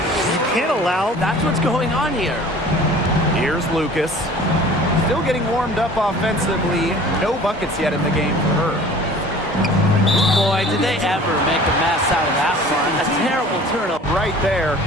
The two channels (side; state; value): both; normal; correlation 0.46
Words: You can't allow... That's what's going on here. Here's Lucas. Still getting warmed up offensively. No buckets yet in the game for her. Boy, did they ever make a mess out of that one. A terrible turnover. Right there.